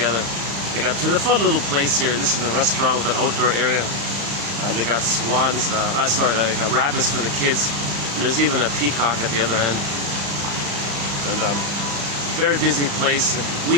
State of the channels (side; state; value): left; late; 35 ms